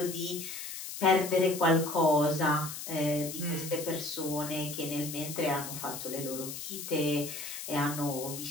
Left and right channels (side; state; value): left; noise; hiss, 8 dB below the sound